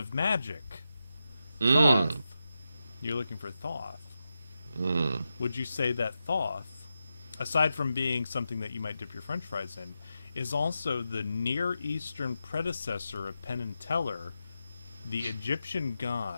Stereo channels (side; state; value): both; inverted; correlation -0.88